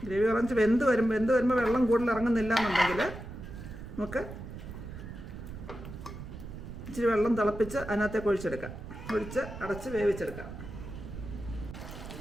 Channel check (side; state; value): right; noise; rumble, 11 dB below the sound